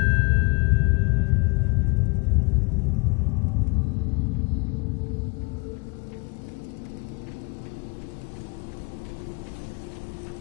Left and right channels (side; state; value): right; quieter; 30.6 dB